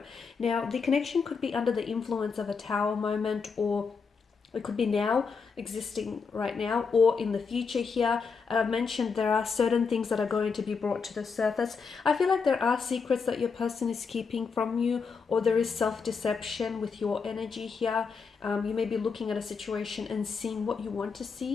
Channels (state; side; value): quieter; right; 5.4 dB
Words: Now, the connection could be under the influence of a tower moment, or it could be now, existing right now, or in the future here. I've mentioned there are certain things that are going to be brought to the surface. I feel like there are secrets that your person is keeping from you, or there is self-deception with your energy here. You may be looking at a situation and seeing what you want to